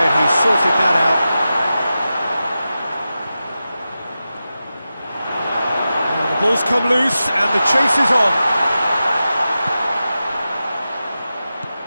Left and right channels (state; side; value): inverted; both; correlation -0.92